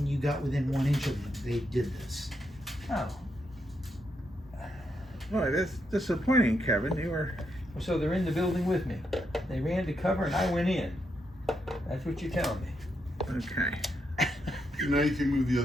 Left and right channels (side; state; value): both; normal; correlation 0.81